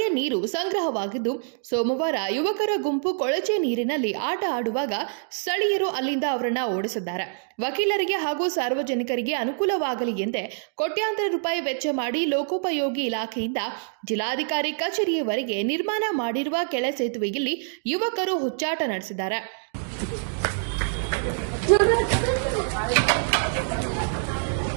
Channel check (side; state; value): left; silent; digital silence